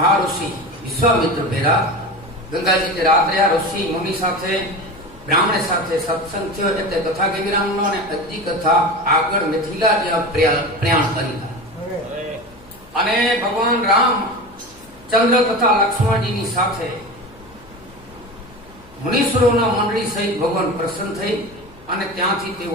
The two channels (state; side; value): noise; left; hum, 25 dB below the sound